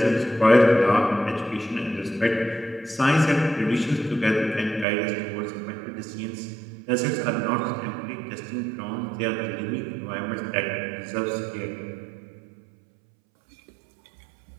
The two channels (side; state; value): left; drops out; at 4.9 s